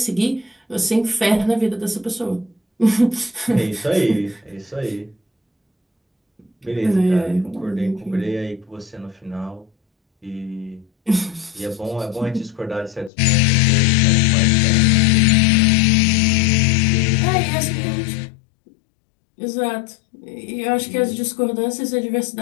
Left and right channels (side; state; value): right; drops out; at 13.1 s